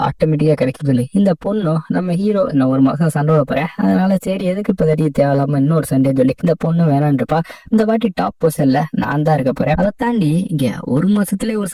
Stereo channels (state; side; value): identical; both; correlation 1.00